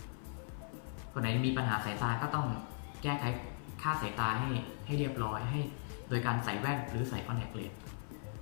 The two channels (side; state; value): right; silent; 52 dB below the other